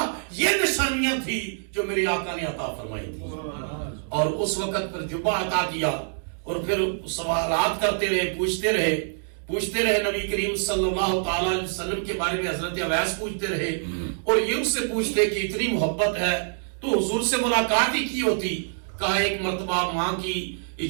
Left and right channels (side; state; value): left; silent; digital silence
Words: یہ نشانیاں تھی جو میرے آقا نے عطا فرمائی تھی. اور اس وقت پر جبہ عطا کیا اور پھر سوالات کرتے رہے پوچھتے رہے نبی کریم صلی اللہ تعالی علیہ وسلم کے بارے میں. حضرت اویس پوچھتے رہے اور یہ اس سے پوچھتے کہ اتنی محبت ہے تو حضور سے ملاقات ہی کی ہوتی. کہا ایک مرتبہ ماں کی